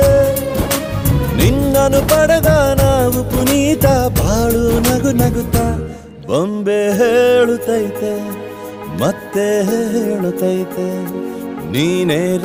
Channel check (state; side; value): identical; both; correlation 1.00